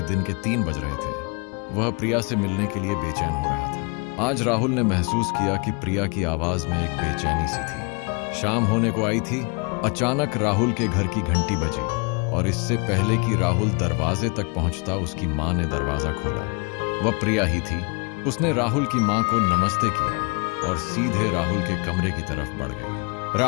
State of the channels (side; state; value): right; quieter; 32.5 dB